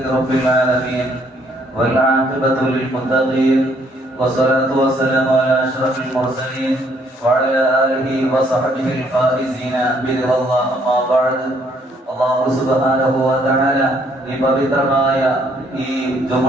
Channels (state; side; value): normal; both; correlation 0.67